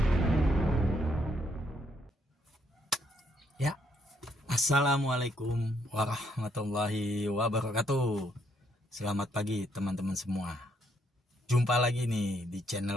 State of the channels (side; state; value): both; normal; correlation 0.72